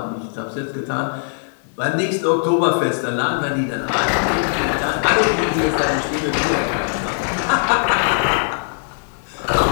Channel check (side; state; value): right; silent; 66 dB below the other